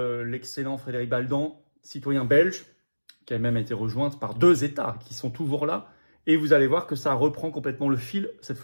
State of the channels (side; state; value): both; inverted; correlation -1.00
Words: l'excellent Frédéric Baldan, citoyen belge, qui a même été rejointe par 2 États qui sont toujours là. Et vous allez voir que ça reprend complètement le fil, cette